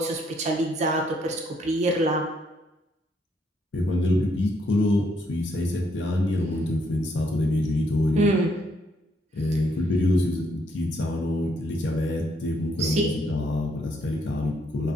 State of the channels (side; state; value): both; normal; correlation 0.72